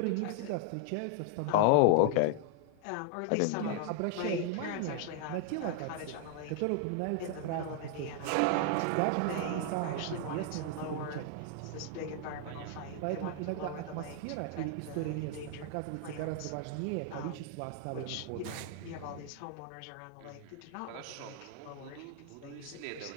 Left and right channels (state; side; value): different; both; correlation 0.00